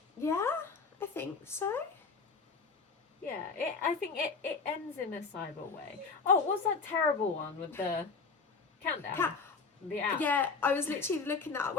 think so. Yeah, I think it ends in a cyber way. Oh, what's that terrible one with the countdown? The app. Yeah, I was literally looking at,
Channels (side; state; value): right; quieter; 4.7 dB